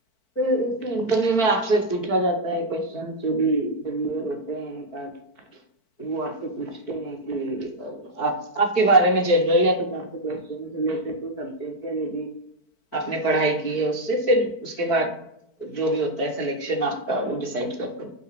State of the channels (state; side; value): late; right; 4.5 ms